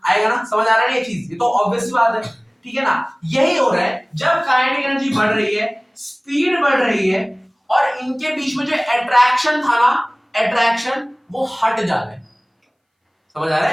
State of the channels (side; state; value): both; identical; correlation 1.00